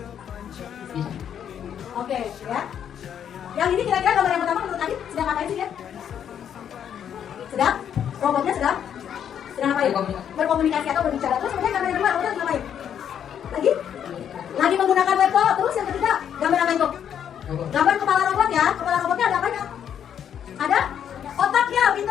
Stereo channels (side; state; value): right; quieter; 9.0 dB